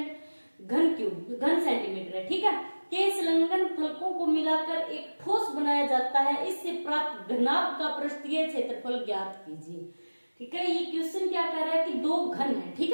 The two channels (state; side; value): inverted; both; correlation -1.00